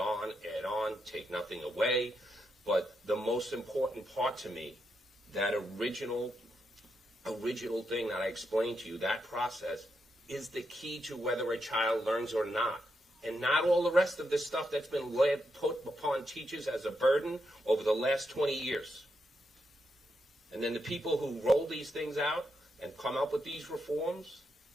add on, take nothing away. But the most important part to me, that original thing that I explained to you, that process, is the key to whether a child learns or not. And not all the rest of this stuff that's been put upon teachers as a burden over the last 20 years. And then the people who roll these things out and come up with these reforms,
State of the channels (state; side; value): normal; both; correlation 0.82